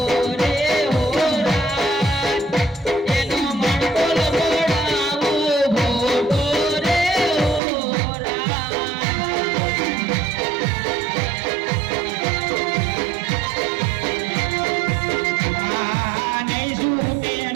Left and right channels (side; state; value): left; drops out; at 7.6 s